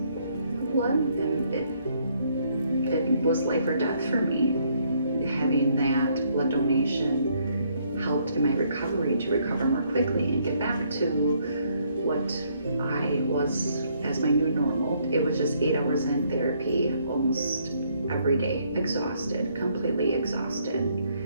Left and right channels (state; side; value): inverted; both; correlation -0.69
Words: blood, and it was life or death for me. Having that blood donation helped in my recovery to recover more quickly and get back to what I was as my new normal. It was just 8 hours in therapy almost every day, exhausted, completely exhausted.